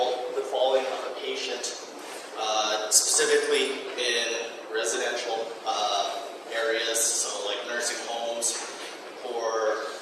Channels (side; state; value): both; identical; correlation 1.00